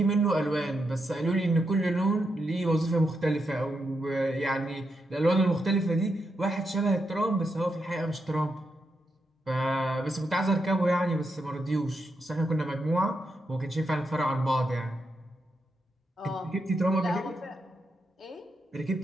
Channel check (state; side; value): normal; both; correlation 0.84